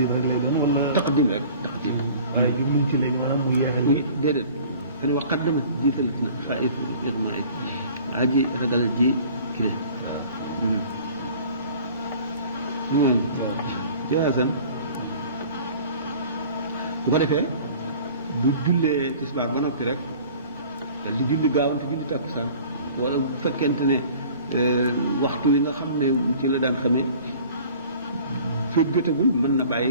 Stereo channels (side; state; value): both; inverted; correlation -0.47